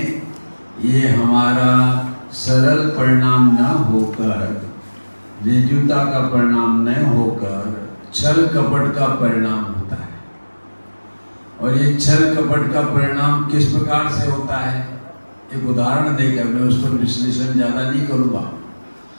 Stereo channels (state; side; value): inverted; both; correlation -1.00